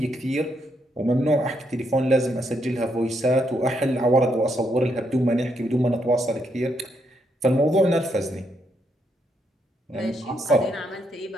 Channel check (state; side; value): normal; both; correlation 0.77